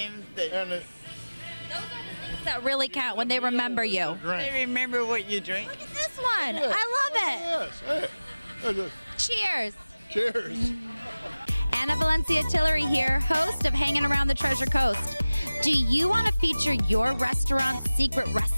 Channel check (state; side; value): inverted; both; correlation -0.99